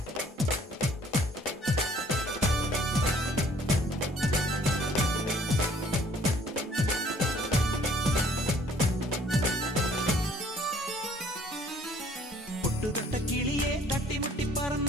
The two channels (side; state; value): both; normal; correlation 0.58